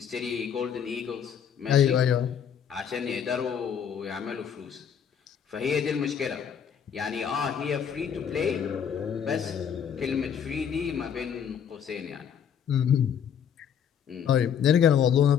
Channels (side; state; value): right; quieter; 8.0 dB